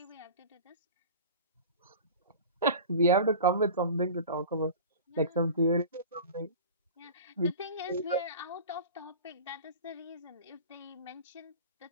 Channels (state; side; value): inverted; both; correlation -0.36